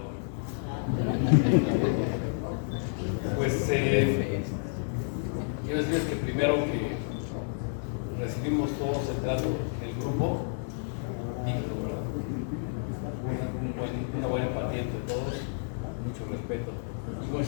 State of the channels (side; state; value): right; silent; 58 dB below the other